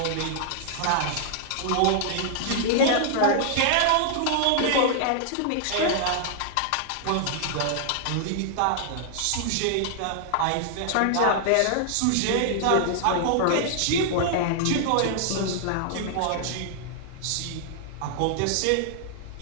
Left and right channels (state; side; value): different; both; correlation -0.01